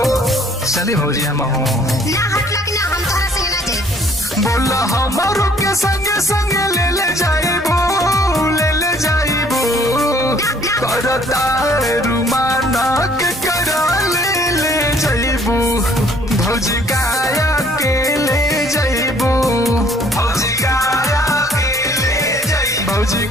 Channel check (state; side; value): normal; both; correlation 0.59